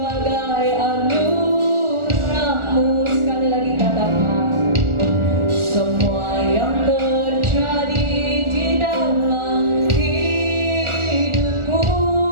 anugerah-Mu. Sekali lagi katakan, semua yang terjadi di dalam hidupku,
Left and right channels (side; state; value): left; late; 1.4 ms